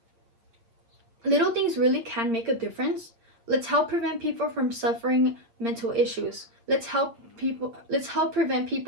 Little things really can make a difference. Let's help prevent people from suffering mental issues. Let's help prevent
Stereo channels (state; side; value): late; left; 8.7 ms